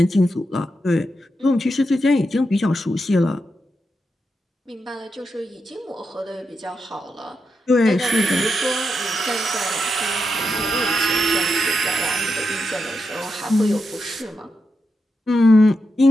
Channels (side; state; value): both; normal; correlation 0.86